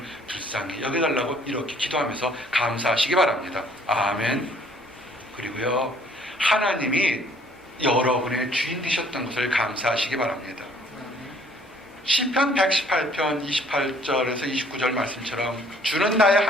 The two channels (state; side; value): normal; both; correlation 0.59